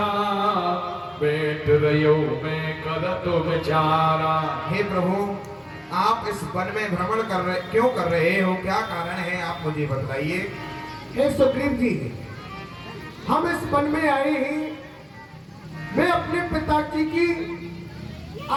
बैठ रहो मैं करत विचारा। हे प्रभु, आप इस वन में भ्रमण क्यों कर रहे हो? क्या कारण है, आप मुझे बताइए। हे सुग्रीव जी, हम इस वन में आए हैं। मैं अपने पिताजी की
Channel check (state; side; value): identical; both; correlation 1.00